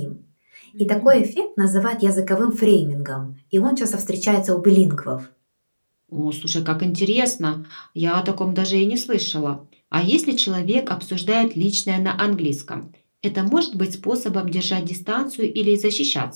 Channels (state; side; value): inverted; both; correlation -1.00